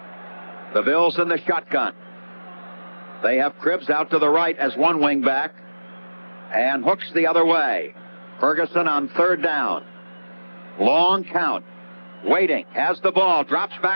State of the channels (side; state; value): both; inverted; correlation -1.00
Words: The Bills in the shotgun. They have Cribbs out to the right as one wing back and Hooks the other way. Ferguson on third down. Long count. Waiting. Has the ball. Drops